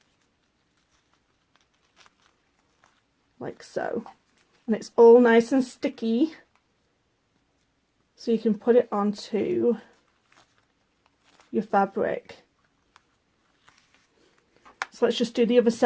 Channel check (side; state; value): both; identical; correlation 1.00